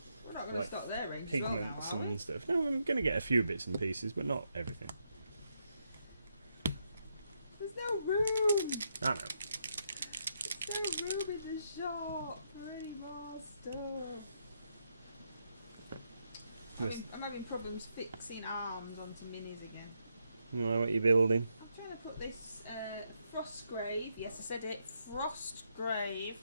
We're not going like to stop there, range pigments well now, are we? and stuff. No, I'm going to get a few bits and pieces, but not everything. There's no room! I know. There's no room in the shop for any more stuff. I'm having problems fixing arms onto minis again. You know what you're building? I'm trying to put this Frostgrave, yes I said it, Frostgrave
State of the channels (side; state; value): both; inverted; correlation -0.79